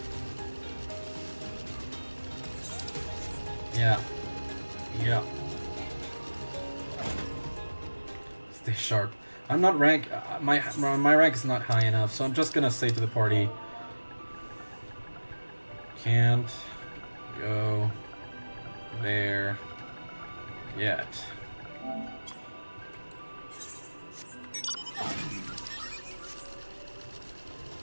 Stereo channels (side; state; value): both; inverted; correlation -1.00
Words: Yeah. Yeah. Stay sharp. I'm not rank. My rank is not high enough, so I'm just gonna say to the party. Can't go there yet.